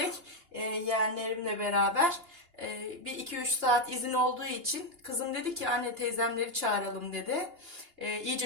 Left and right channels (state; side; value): late; left; 2.8 ms